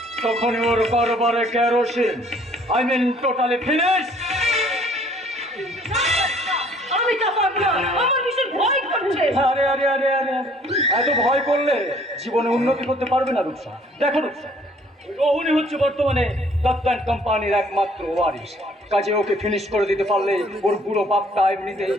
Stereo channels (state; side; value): normal; both; correlation 0.58